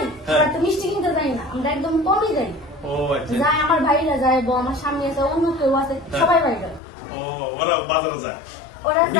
হ্যাঁ। আমরা তো মিষ্টি কিনতে যাই না, আমরা একদম কমই যাই। ও আচ্ছা যাই আমার ভাইরা যায়, আমার সামনে আছে, অন্য কেউ আছে, সবাই বাইরে। ও ওরা বাজারে যায় ওরা যায়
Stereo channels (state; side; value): drops out; right; at 6.8 s